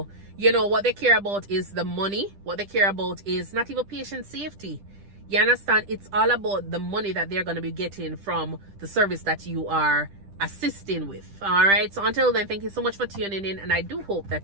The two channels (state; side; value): late; left; 10 ms